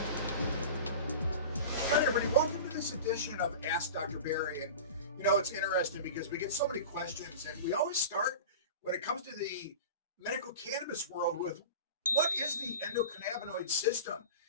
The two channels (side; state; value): both; inverted; correlation -0.32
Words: everybody. Welcome to this edition of Ask Dr. Barry. And, it's interesting because we get so many questions, and we always start when it comes to the medical cannabis world with what is the endocannabinoid system?